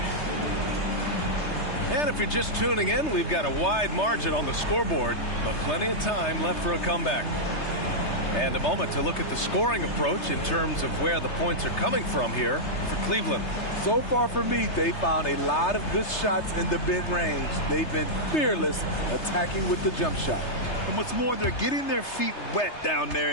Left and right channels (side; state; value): right; late; 3.3 ms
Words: And if you're just tuning in, we've got a wide margin on the scoreboard, but plenty of time left for a comeback. And a moment to look at the scoring approach in terms of where the points are coming from here for Cleveland. So far for me, they found a lot of good shots in the mid-range. They've been fearless attacking with the jump shot. And what's more, they're getting their feet wet down there